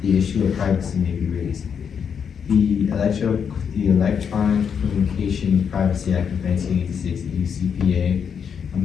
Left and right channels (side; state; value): right; quieter; 7.2 dB